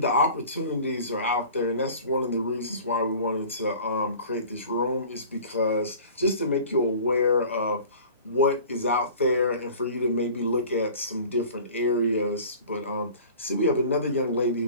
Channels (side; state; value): both; inverted; correlation -0.43